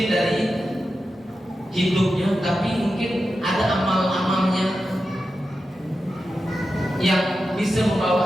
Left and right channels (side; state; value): both; normal; correlation 0.90